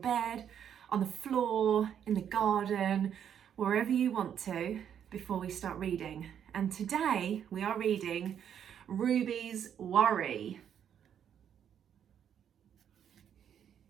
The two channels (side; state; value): left; quieter; 8.9 dB